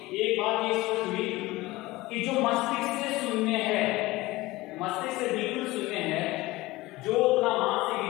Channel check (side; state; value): right; quieter; 19.7 dB